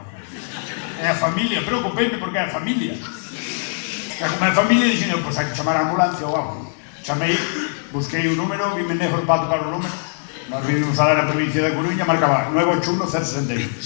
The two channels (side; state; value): right; silent; digital silence